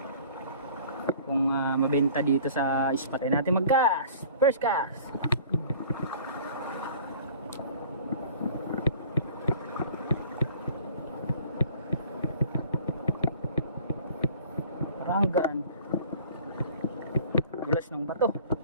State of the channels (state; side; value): inverted; both; correlation -0.48